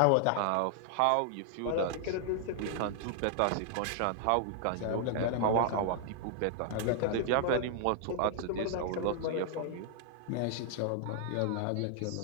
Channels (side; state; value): both; different; correlation 0.00